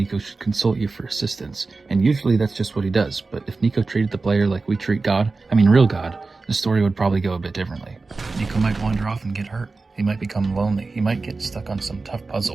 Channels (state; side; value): quieter; left; 3.8 dB